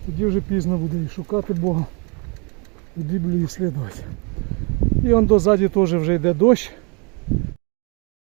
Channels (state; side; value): quieter; left; 32.4 dB